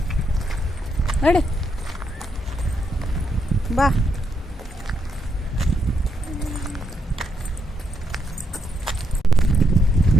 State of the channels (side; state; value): both; normal; correlation 0.78